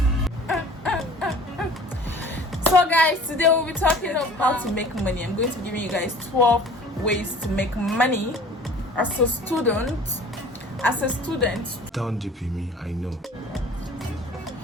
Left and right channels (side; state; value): both; normal; correlation 0.46